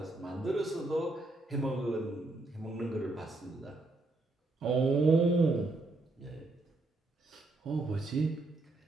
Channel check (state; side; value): quieter; left; 3.0 dB